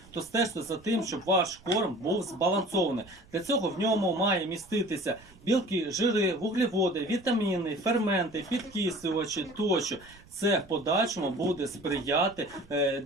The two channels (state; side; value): noise; right; rumble, 25 dB below the sound